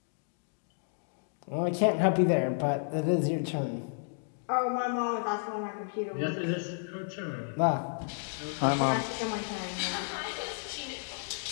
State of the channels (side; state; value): right; silent; digital silence